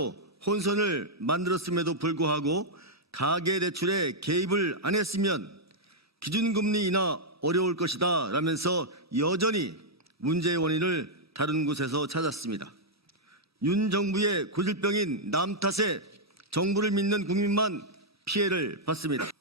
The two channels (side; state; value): both; normal; correlation -0.05